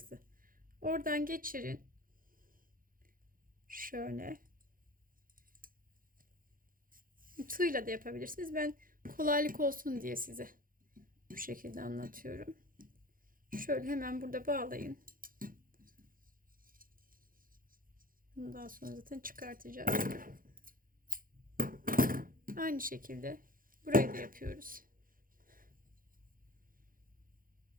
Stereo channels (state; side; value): late; left; 0.41 ms